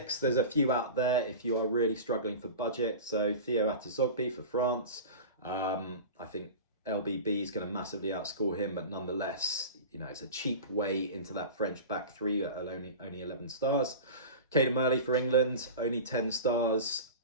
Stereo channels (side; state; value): both; inverted; correlation -0.32